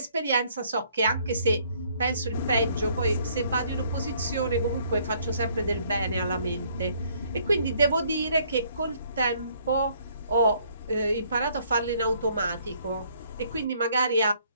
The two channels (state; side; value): inverted; both; correlation -0.64